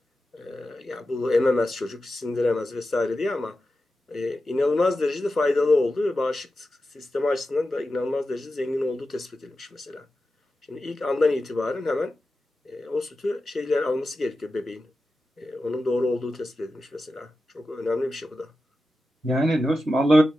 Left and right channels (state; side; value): normal; both; correlation 0.92